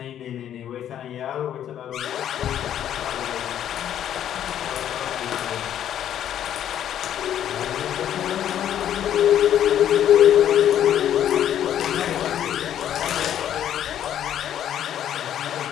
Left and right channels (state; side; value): quieter; right; 10.5 dB